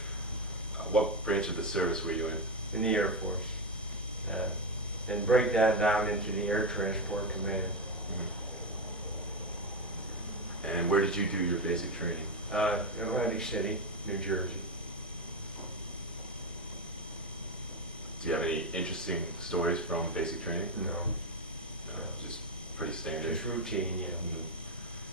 What branch of the service were you in? In the Air Force, and break that down into the Air Transport Command. And where did you do your basic training? Atlantic City, New Jersey. Do you have any interesting stories from basic training? No. No, just pretty standard. Just routine, yeah.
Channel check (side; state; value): both; normal; correlation 0.11